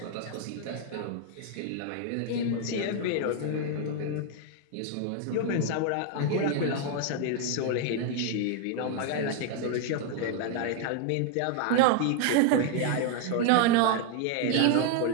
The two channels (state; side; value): different; both; correlation 0.00